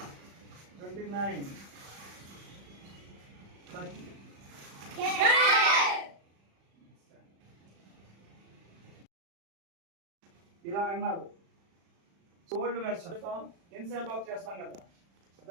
29, 30. ఇలా అన్నారు. ఓల్డ్ వెర్షన్ ఇన్సైడ్ బ్లాక్ చేస్తాం కదా,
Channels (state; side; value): late; left; 36 ms